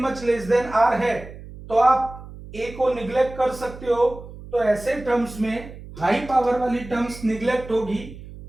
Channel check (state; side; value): noise; right; hum, 15 dB below the sound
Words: less than r है तो आप a को निग्लेक्ट कर सकते हो, तो ऐसे टर्म्स में हाई पावर वाली टर्म्स निग्लेक्ट होगी.